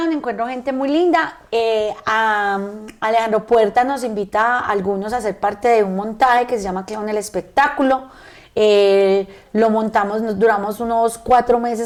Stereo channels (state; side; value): identical; both; correlation 1.00